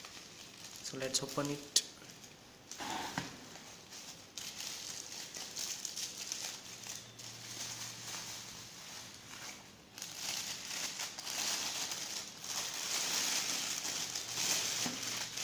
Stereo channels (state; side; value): identical; both; correlation 1.00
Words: So let's open it.